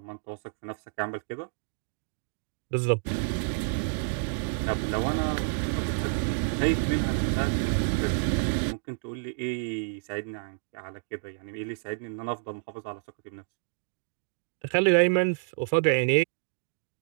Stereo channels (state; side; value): silent; left; digital silence